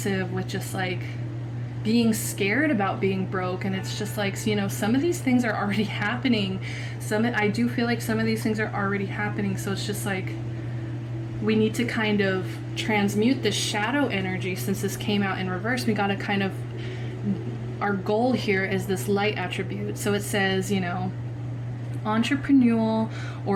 with just like being scared about being broke. And it's just like, you know, some of these things are already happening. I do feel like some of these things are already happening. So it's just like, we need to kind of transmute this shadow energy. Since this came out in reverse, we got to kind of, our goal here is this light attribute. So it says, you know, entrepreneurial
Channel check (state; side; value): identical; both; correlation 1.00